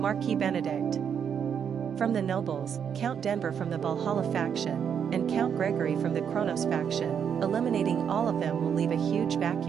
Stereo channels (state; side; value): quieter; left; 7.8 dB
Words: Benedict from the nobles, Count Denver from the Valhalla faction, and Count Gregory from the Kronos faction, eliminating all of them will leave a huge